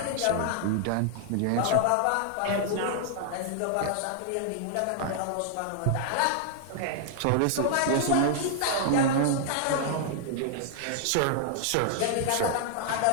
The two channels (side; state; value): both; different; correlation 0.00